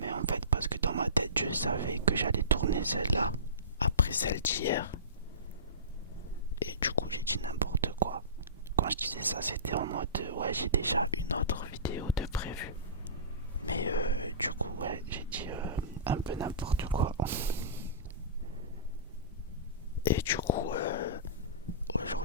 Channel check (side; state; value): both; inverted; correlation -0.30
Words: en fait, parce que dans ma tête, je savais que j'allais tourner celle-là après celle d'hier. Et du coup, j'ai dit n'importe quoi. Quand je disais ça, c'était en mode ouais, j'ai déjà une autre vidéo de prévue. Mais du coup, ouais, j'ai dit un peu n'importe quoi. Et du coup,